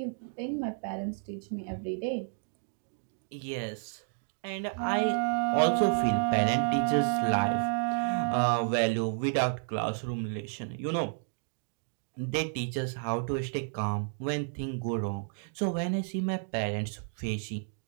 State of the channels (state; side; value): silent; left; 57 dB below the other